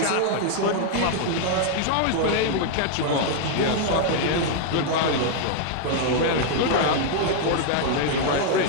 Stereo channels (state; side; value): different; both; correlation 0.00